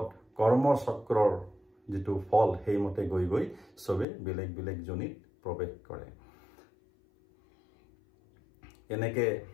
কৰ্মচক্ৰৰ যিটো ফল সেইমতে গৈ গৈ সবে বেলেগ বেলেগ জনিত প্ৰৱেশ কৰে এনেকৈ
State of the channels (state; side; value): drops out; right; at 4.0 s